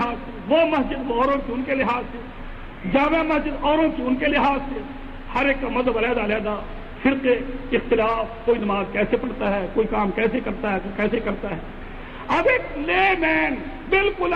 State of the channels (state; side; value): identical; both; correlation 1.00